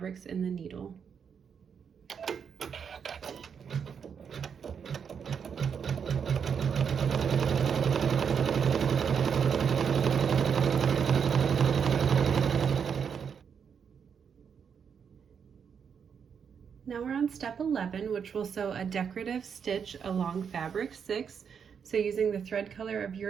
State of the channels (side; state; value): left; quieter; 7.0 dB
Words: in the needle. Now we're on step 11, which will sew a decorative stitch along fabric 6. So using the thread color of